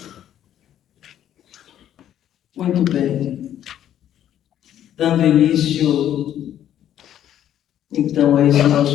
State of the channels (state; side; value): quieter; right; 11.0 dB